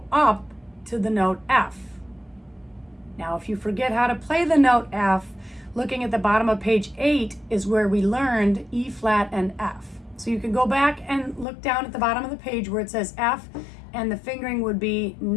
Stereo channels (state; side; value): drops out; right; at 11.5 s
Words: up to the note F. Now, if you forget how to play the note F, looking at the bottom of page 8 is where we learned E flat and F. So you can go back and look down at the bottom of the page where it says F, and the fingering would be